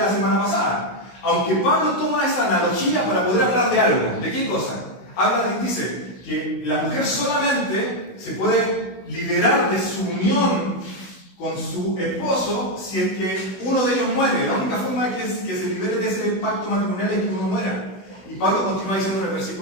semana pasada. Aunque Pablo toma esa analogía para poder hablar de algo. ¿De qué cosa? Dice que la mujer solamente se puede liberar de su unión con su esposo si es que uno de ellos muere. La única forma de que se libere de ese pacto matrimonial es que uno muera. Y Pablo continúa diciendo en el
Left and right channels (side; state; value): right; late; 16 ms